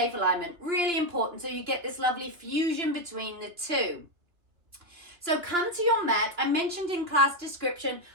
alignment, really important, so you get this lovely fusion between the two. So come to your mat. I mentioned in class description,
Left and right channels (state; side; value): late; left; 2.7 ms